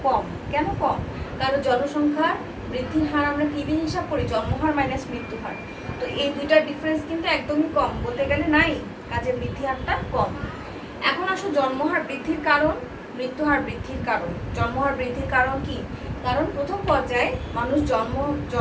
কম। কেন কম, কারণ জনসংখ্যার বৃদ্ধির হার আমরা কি দিয়ে হিসাব করি, জন্মহার মাইনাস মৃত্যুহার। তো এই দুইটার ডিফারেন্স কিন্তু একদমই কম, বলতে গেলে নাই, কাজে বৃদ্ধি হারটা কম। এখন আসো জন্মহার বৃদ্ধির কারণ, মৃত্যুহার বৃদ্ধির কারণ। জন্মহার বৃদ্ধির কারণ কি, কারণ প্রথম পর্যায়ে মানুষ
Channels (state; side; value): identical; both; correlation 1.00